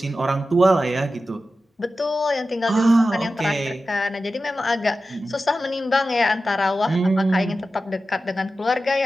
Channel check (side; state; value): both; normal; correlation 0.93